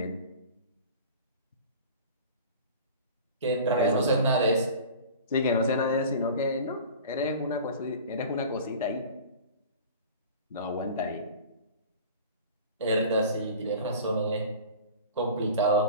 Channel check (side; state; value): both; inverted; correlation -0.39